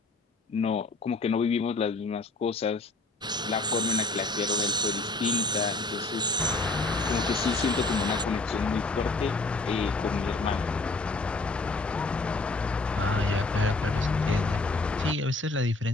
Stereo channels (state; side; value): quieter; right; 3.3 dB